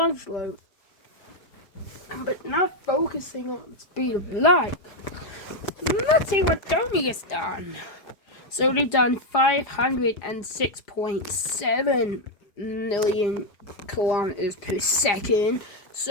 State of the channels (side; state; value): right; late; 5.0 ms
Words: load. But not focusing on the speed of light. Let's see what Tony has done. So they've done 506.7 million kilometers per second.